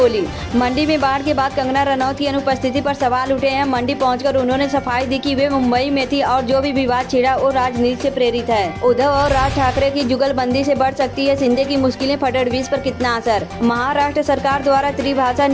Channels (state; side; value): identical; both; correlation 1.00